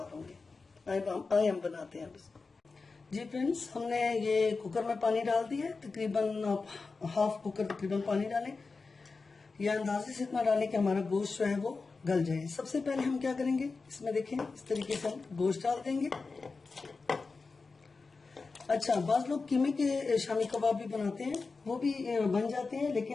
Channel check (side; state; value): right; quieter; 4.2 dB